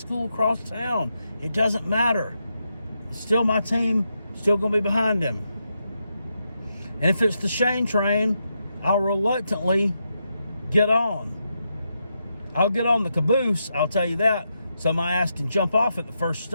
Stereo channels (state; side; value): inverted; both; correlation -0.84